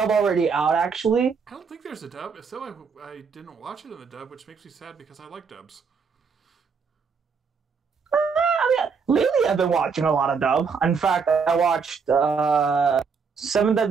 already out, actually? I don't think there's a dub. If so, I didn't watch it in the dub, which makes me sad because I like dubs. Lately I've been watching a lot of dub. In fact, I watched Seven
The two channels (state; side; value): quieter; left; 5.6 dB